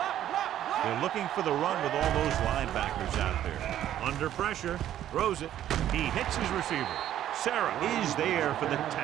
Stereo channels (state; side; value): quieter; left; 11.7 dB